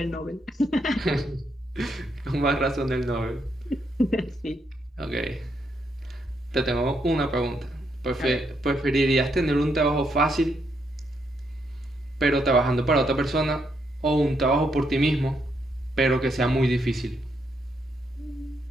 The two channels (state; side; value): normal; both; correlation 0.77